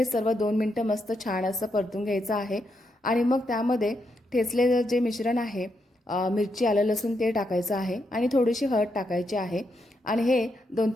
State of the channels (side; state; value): both; normal; correlation 0.81